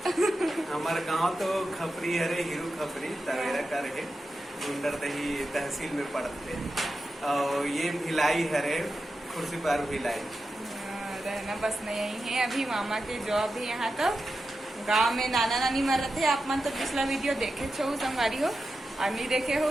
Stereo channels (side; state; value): both; normal; correlation 0.90